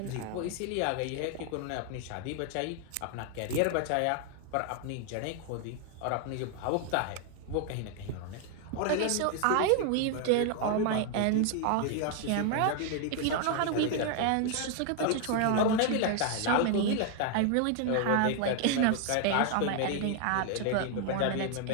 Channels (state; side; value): different; both; correlation 0.00